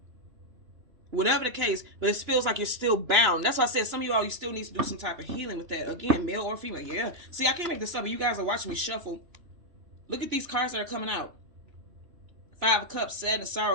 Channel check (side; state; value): left; late; 2.9 ms